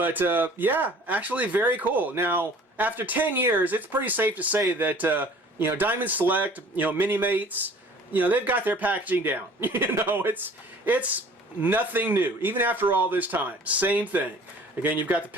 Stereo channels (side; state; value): both; normal; correlation 0.49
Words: yeah, actually very cool. Now, after 10 years, it's pretty safe to say that you know, Diamond Select, you know, Mini-Mates, you know, they've got their packaging down. You know, it's nothing new, even after all this time. Same thing. Again, you've got the